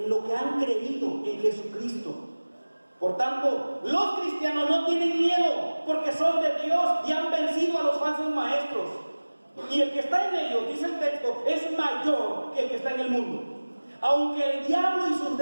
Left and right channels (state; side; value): inverted; both; correlation -1.00